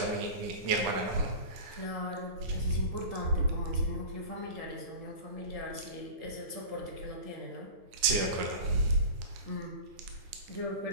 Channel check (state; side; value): late; left; 9.9 ms